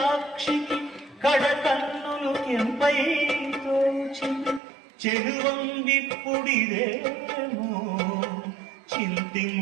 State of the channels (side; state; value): left; drops out; at 4.6 s